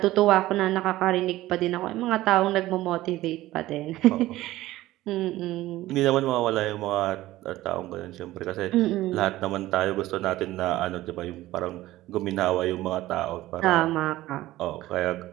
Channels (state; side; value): quieter; left; 16.3 dB